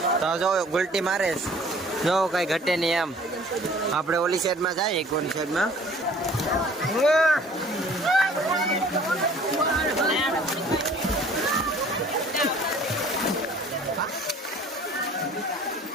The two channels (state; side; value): normal; both; correlation 0.51